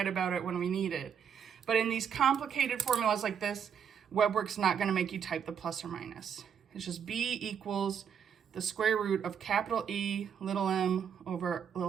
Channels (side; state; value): left; quieter; 7.8 dB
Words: about it when we need it. But in these complicated formulas like this, WebWorks not going to make you type the plus or minus. It's just b equals the square root of capital E, little m over